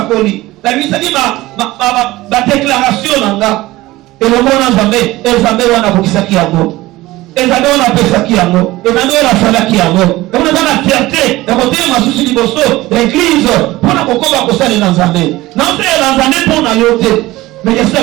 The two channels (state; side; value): quieter; left; 18.3 dB